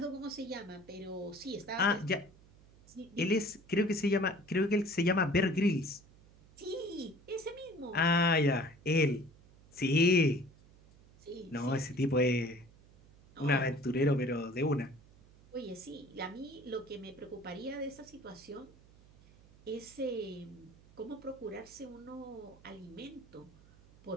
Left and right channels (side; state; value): right; noise; hum, 25 dB below the sound